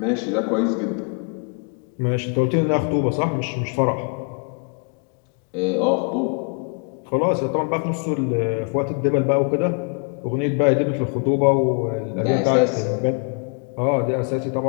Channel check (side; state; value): right; quieter; 37.7 dB